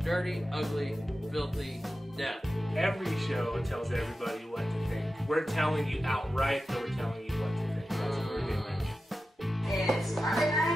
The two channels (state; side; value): normal; both; correlation 0.93